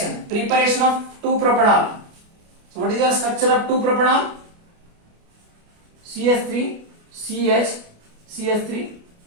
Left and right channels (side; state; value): left; late; 29 ms